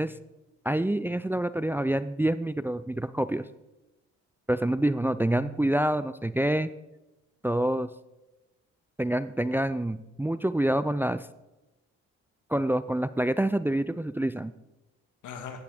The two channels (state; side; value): normal; both; correlation 0.92